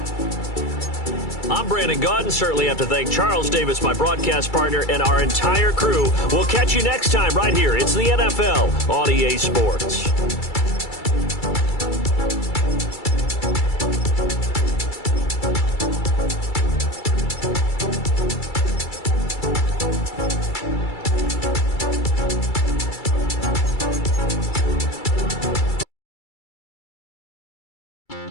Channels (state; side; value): late; right; 2.3 ms